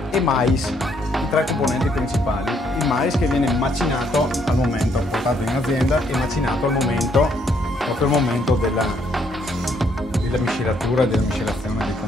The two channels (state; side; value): normal; both; correlation 0.70